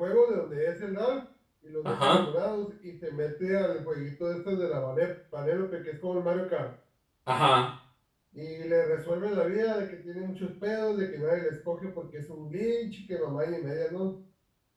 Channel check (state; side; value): identical; both; correlation 1.00